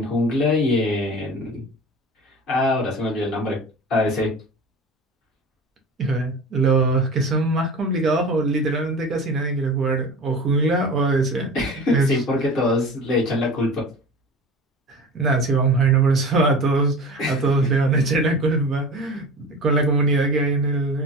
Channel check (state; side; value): normal; both; correlation 0.35